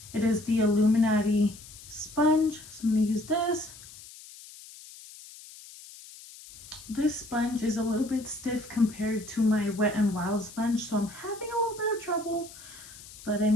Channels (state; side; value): noise; left; hiss, 18 dB below the sound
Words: It is the Illuminati sponge. So I'm going to use this. This sponge is a little bit stiff compared to my Wet n Wild sponge, so I'm having a little bit of trouble. But I